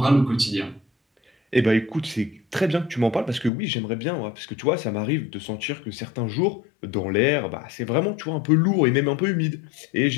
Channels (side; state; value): right; drops out; at 3.5 s